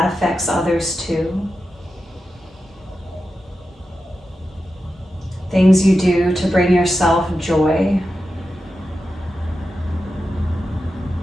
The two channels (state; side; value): normal; both; correlation 0.91